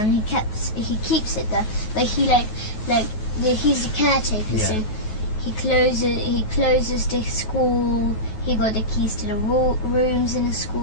he keeps it there. But he's the caretaker, Yeah. so he closes the school. He got the keys to the rooms in the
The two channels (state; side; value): late; right; 9.3 ms